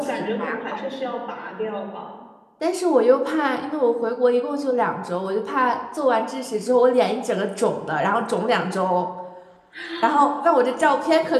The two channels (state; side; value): identical; both; correlation 1.00